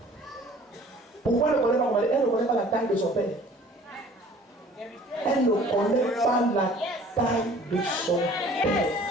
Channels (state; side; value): normal; both; correlation 0.50